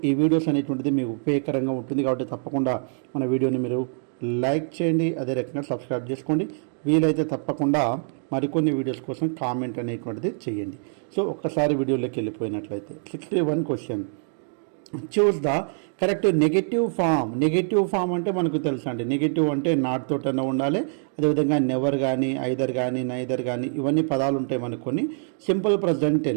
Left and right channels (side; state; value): left; silent; 62 dB below the other